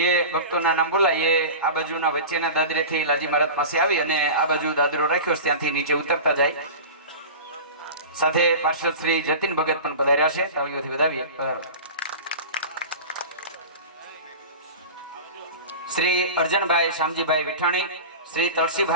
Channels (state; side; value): inverted; both; correlation -0.32